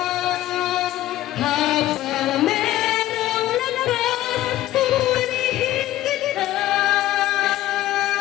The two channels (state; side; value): quieter; right; 14.8 dB